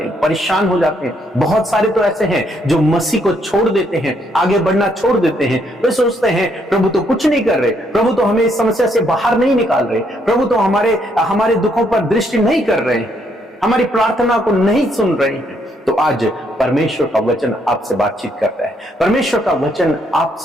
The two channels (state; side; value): normal; both; correlation 0.72